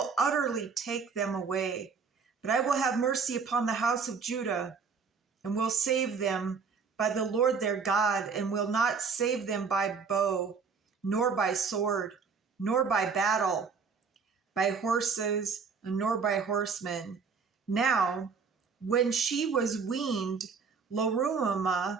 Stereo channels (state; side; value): quieter; left; 5.5 dB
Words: utterly take them away. But I will have mercy upon the house of Judah, and will save them by the Lord their God, and will not save them by bow, nor by sword, nor by battle, by horses, nor by horsemen. Now, when she was weaned,